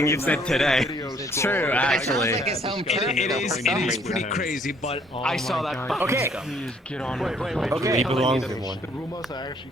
you've said today. True, actually. It is pretty crazy, but I saw that. Okay. Please get on it. Wait. Okay. He belongs in one. The rumors are actually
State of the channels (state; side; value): normal; both; correlation 0.64